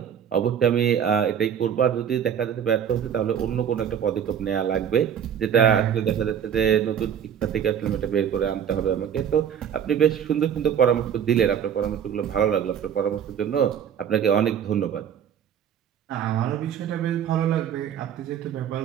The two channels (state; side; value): quieter; left; 8.7 dB